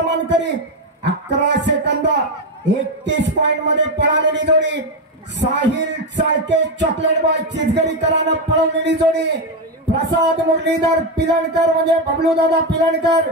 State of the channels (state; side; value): normal; both; correlation 0.08